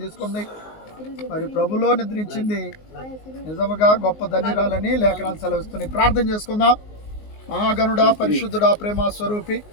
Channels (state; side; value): late; right; 19 ms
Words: తీసుకుంది, మరి ప్రభులో నిద్రించింది, నిజముగా గొప్ప ధన్యురాలని లేఖనాలు సెలవిస్తున్నాయి. ప్రార్థన చేసుకుందాం. మహాగణుడా, పరిశుద్ధుడా, ప్రేమ స్వరూపి,